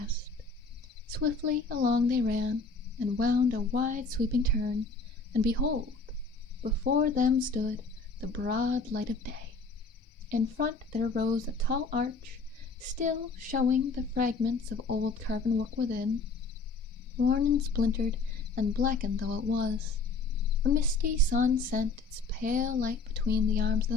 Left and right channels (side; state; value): right; quieter; 3.8 dB